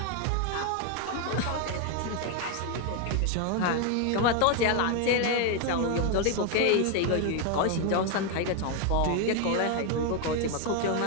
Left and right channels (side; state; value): both; different; correlation 0.01